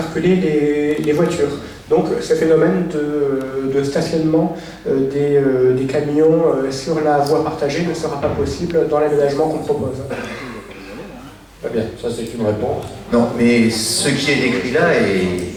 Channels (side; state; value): both; identical; correlation 1.00